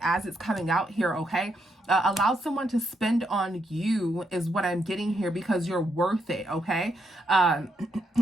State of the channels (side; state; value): both; normal; correlation 0.79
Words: it's coming out here, okay? Allow someone to spend on you is what I'm getting here, because you're worth it, okay?